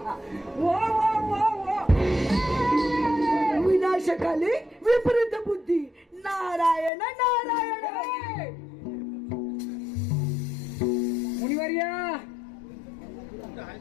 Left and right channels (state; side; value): drops out; right; at 6.9 s